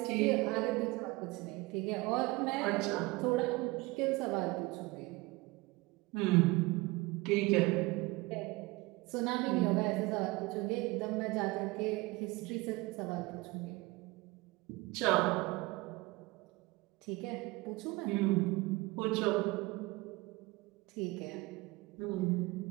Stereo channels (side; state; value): left; quieter; 22.5 dB